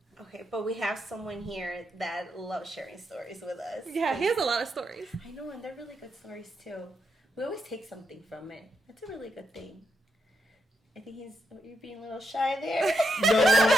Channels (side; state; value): both; normal; correlation 0.82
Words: Okay, but we have someone here that loves sharing stories with us. Yeah, he has a lot of stories. I know, and they're really good stories too. We always take something from it. That's a really good thing. I think you're being a little shy there. No.